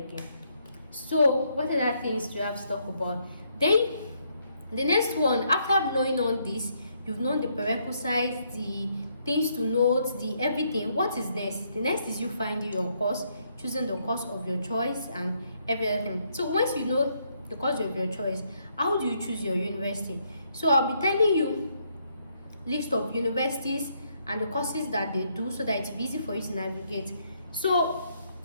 So what other things do you have to talk about? Then the next one, after knowing all this, you've known the prerequisites, the things to note, the everything. What is next? The next is you finding your course, choosing the course of your choice and everything. So once you know the course of your choice, how do you choose your university? So I'll be telling you list of universities and the courses that they do so that it's easy for you to navigate. So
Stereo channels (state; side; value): inverted; both; correlation -0.73